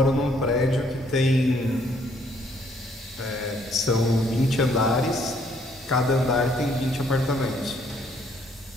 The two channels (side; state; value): both; normal; correlation 0.66